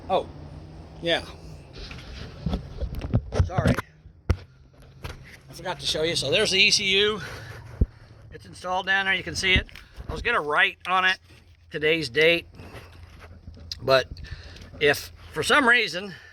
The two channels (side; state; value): both; identical; correlation 1.00